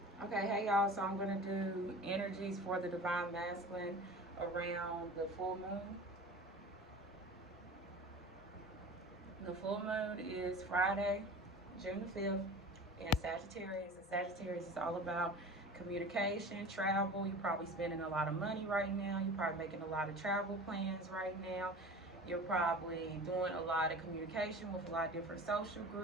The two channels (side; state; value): both; normal; correlation 0.37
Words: Okay, hey y'all. So I'm gonna do energies for the divine masculine around the full moon. The full moon is Friday, June the 5th, in Sagittarius. And Sagittarius is all about communication, travel. You're probably spending a lot of money right now. You're probably making a lot of travel plans right now. You're probably doing a lot of communication with a lot of different social